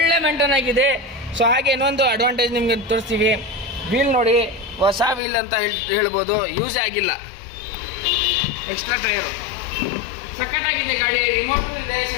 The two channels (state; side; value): drops out; right; at 5.2 s